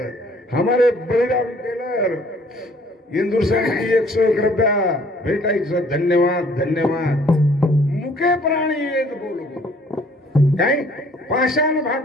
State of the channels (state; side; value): normal; both; correlation 0.58